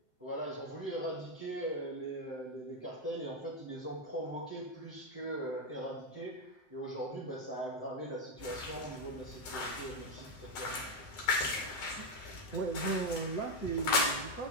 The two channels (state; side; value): late; right; 7.8 ms